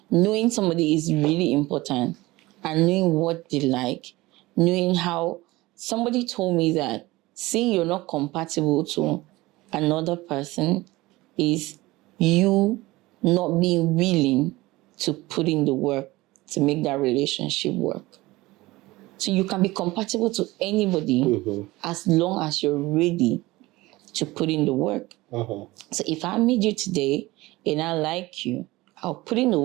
knowing somebody is really important, and knowing what they like, knowing how somebody told me that seeing you're not compatible to another person is you not being willing to put in the work to make that relationship work. So you can be compatible to anybody as long as you're ready to put in the work. So if I meet you today and I like you, I'll put in the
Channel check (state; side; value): quieter; left; 19.8 dB